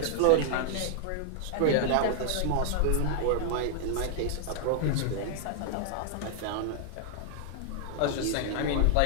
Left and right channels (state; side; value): different; both; correlation 0.00